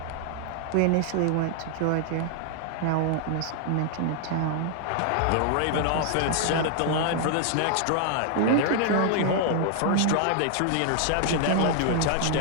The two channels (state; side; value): different; both; correlation 0.00